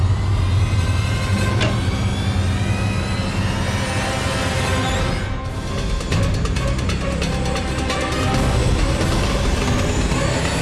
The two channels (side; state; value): both; identical; correlation 1.00